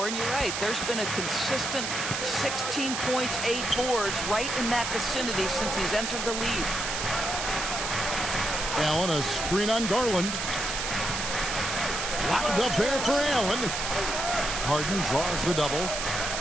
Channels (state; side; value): noise; right; hiss, 3 dB below the sound